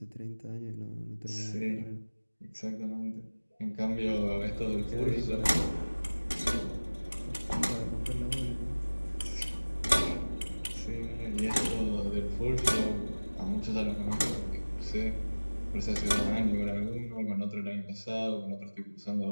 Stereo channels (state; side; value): inverted; both; correlation -1.00